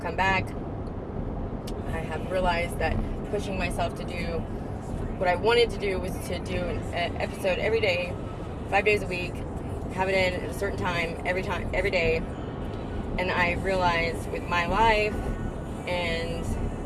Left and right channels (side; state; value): both; identical; correlation 1.00